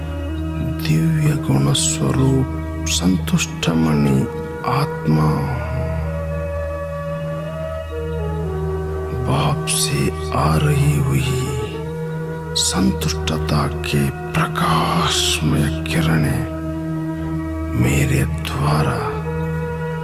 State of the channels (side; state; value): both; identical; correlation 1.00